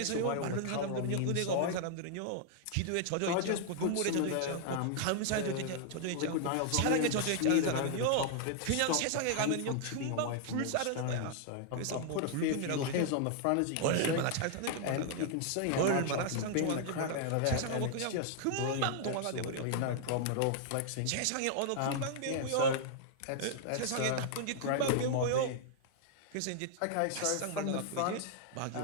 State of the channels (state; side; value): different; both; correlation -0.01